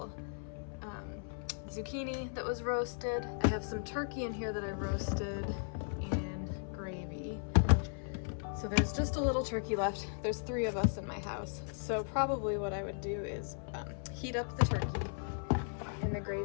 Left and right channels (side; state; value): right; silent; 53 dB below the other